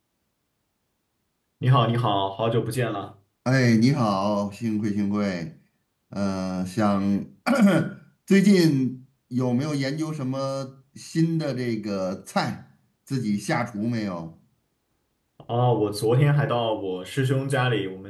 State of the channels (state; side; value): identical; both; correlation 1.00